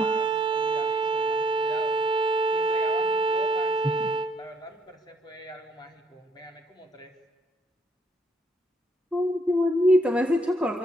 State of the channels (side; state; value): both; normal; correlation 0.67